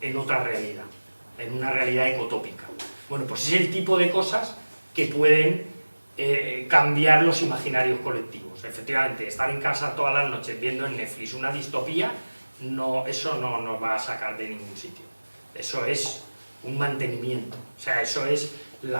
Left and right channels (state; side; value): inverted; both; correlation -1.00